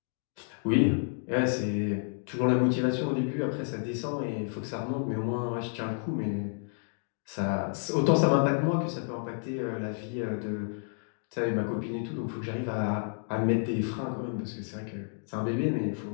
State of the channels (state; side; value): silent; right; 58 dB below the other